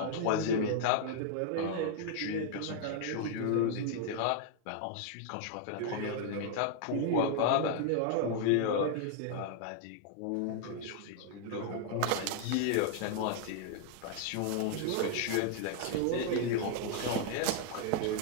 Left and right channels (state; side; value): different; both; correlation -0.01